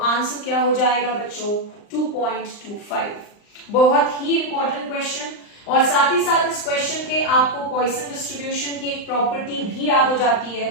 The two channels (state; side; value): late; right; 39 ms